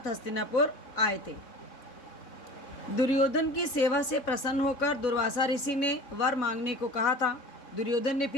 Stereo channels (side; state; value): right; late; 3.6 ms